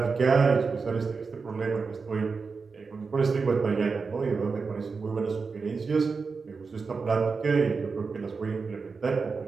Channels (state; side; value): quieter; left; 4.8 dB